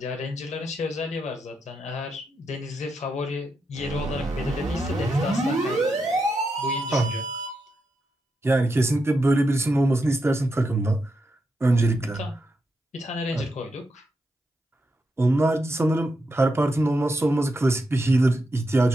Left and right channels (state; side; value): normal; both; correlation 0.84